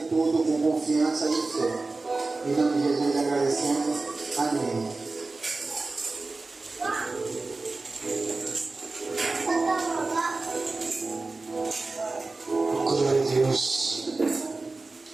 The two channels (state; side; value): quieter; left; 3.5 dB